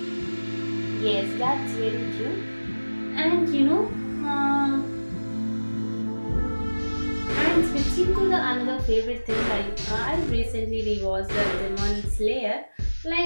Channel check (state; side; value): inverted; both; correlation -1.00